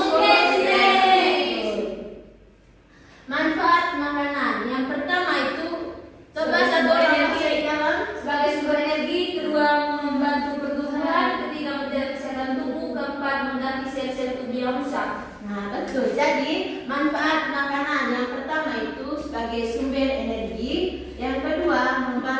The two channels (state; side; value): identical; both; correlation 1.00